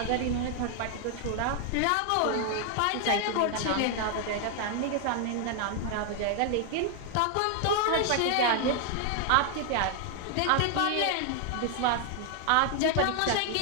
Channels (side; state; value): both; different; correlation 0.00